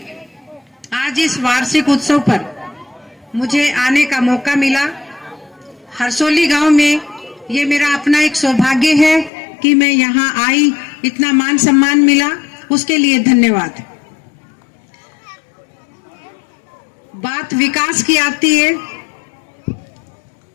आज इस वार्षिक उत्सव पर मुझे आने का मौका मिला। हरसोली गांव में ये मेरा अपना एक सौभाग्य है कि मैं यहाँ आई, इतना मान सम्मान मिला, उसके लिए धन्यवाद। बात विकास की आती है।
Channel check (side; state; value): right; drops out; at 9.3 s